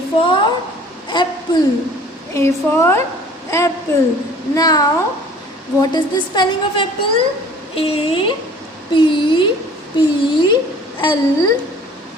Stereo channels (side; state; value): both; normal; correlation 0.50